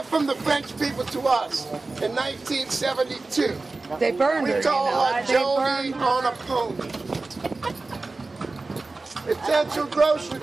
from the French people to us in 1972. They burned her, We you call know. her They Joni burned her. on a pony. Essential Grocery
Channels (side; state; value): left; quieter; 3.5 dB